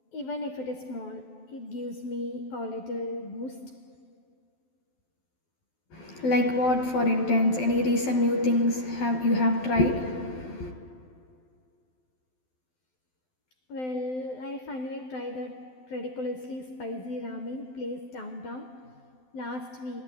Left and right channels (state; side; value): late; right; 12 ms